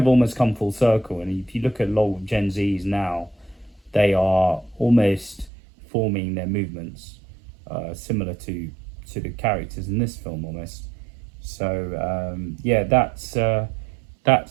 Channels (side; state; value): left; drops out; at 5.5 s